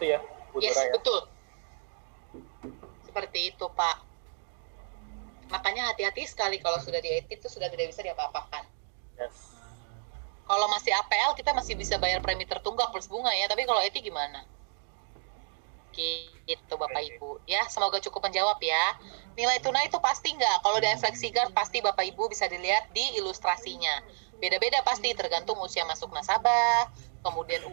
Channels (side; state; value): left; silent; digital silence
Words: ya Bu Dora ya. Betul. Seperti itu Pak. Makanya hati-hati sekali kalau sudah di ETI itu sudah tidak bisa diapa-apakan. Yes. Kalau masih APL kita masih bisa bayar premi tertunggak plus bunga ya, tapi kalau ETI gimana? Gitu Bapak Ibu ya, semoga cukup menjawab ya. Nilai tunai itu pasti nggak, kalau di FlexiGuard pasti Bapak Ibu bisa dilihat di ilustrasinya. Beda-beda pasti tergantung usia masuk nasabah, kemudian